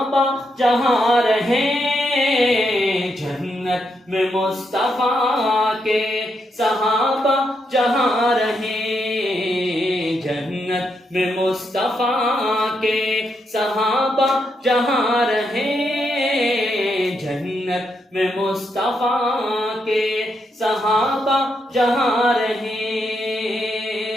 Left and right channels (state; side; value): normal; both; correlation 0.80